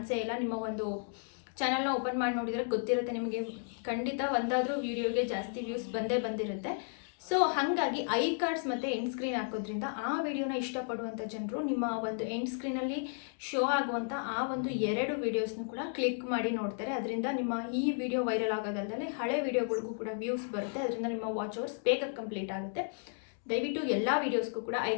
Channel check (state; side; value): silent; right; 55 dB below the other